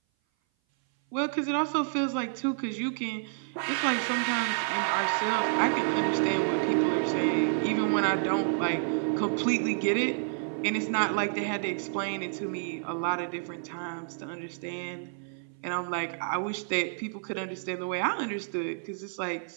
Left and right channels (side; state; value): left; silent; 57 dB below the other